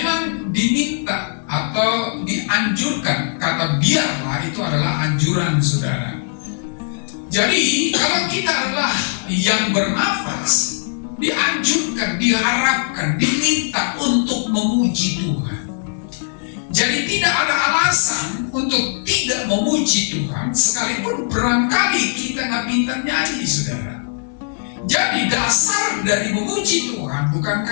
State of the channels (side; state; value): right; silent; digital silence